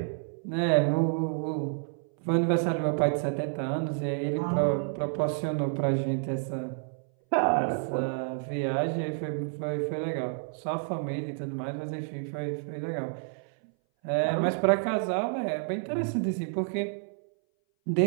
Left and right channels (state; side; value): silent; left; 58 dB below the other